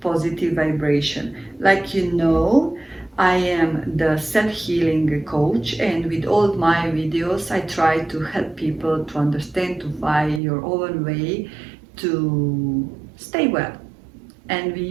Positive Vibration. Like you know, I am the self-healing coach, and with all my videos I try to help people to understand, to find your own way to stay well. And we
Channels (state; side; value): drops out; left; at 10.4 s